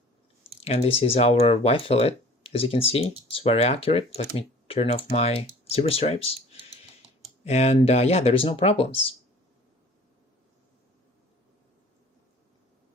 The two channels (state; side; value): normal; both; correlation 0.48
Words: and this is our Y-fillet. As you can see, it's very accurate. Let me turn off my zebra stripes. And yeah, there is no problems.